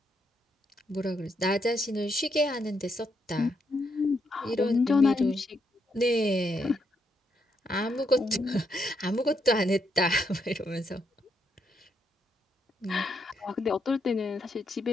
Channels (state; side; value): normal; both; correlation 0.78